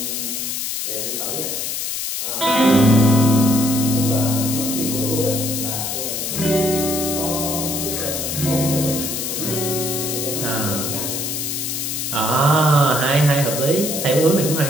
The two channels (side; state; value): left; noise; hiss, 3 dB below the sound